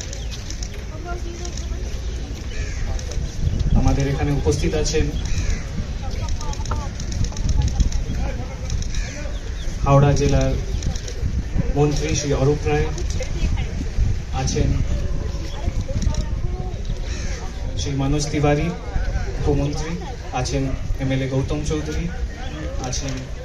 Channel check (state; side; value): identical; both; correlation 1.00